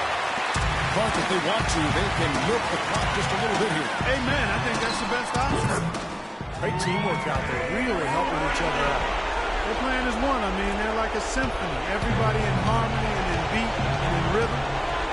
But if they want to, they can milk the clock just a little bit here. Amen. I think that's the best option. Great teamwork out there, really helping each other out. Their plan is one. I mean, they're like a symphony. Everybody in harmony and in beat and in rhythm.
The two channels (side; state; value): both; identical; correlation 1.00